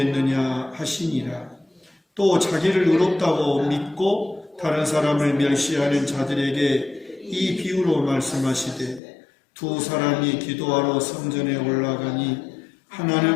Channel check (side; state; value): right; drops out; at 9.0 s